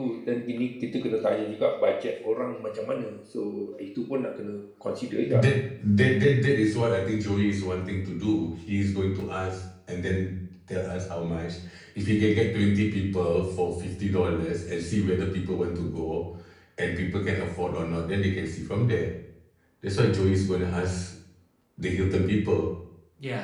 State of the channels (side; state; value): both; identical; correlation 1.00